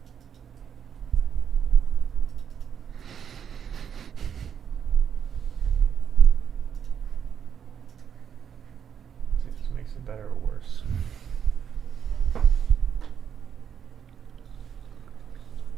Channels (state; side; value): quieter; left; 8.0 dB